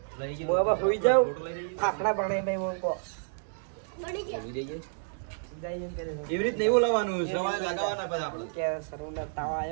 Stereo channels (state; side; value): silent; left; digital silence